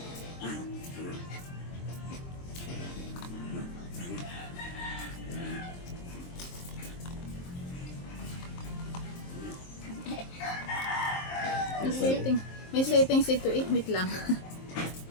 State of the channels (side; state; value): right; late; 23 ms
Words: May settings ito eh. Wait lang.